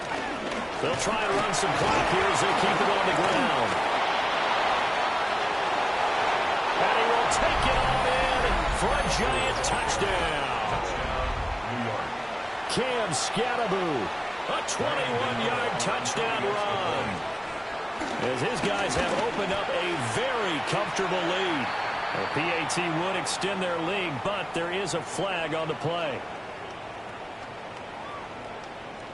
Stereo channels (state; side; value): identical; both; correlation 1.00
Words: try and run some clock here as they keep it on the ground. And he will take it all in for a Giant touchdown. New York. Cam Scatteraboo, a 21-yard touchdown run. As his guys have opened up a very comfortable lead. The PAT would extend their lead, but there is a flag on the play.